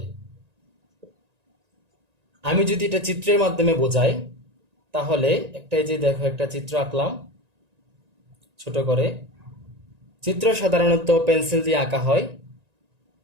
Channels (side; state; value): left; late; 1.9 ms